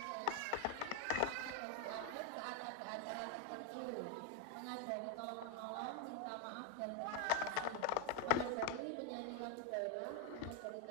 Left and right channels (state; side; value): different; both; correlation 0.01